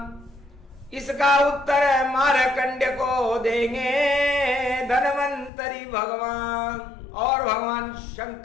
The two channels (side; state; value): right; drops out; at 5.5 s